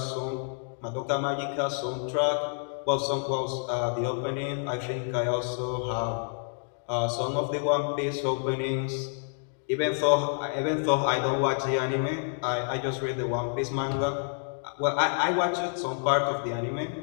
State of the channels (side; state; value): right; silent; 59 dB below the other